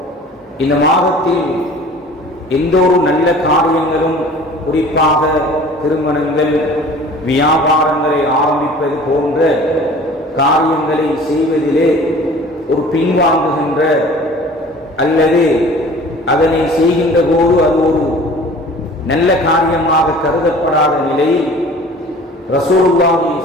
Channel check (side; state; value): both; normal; correlation 0.46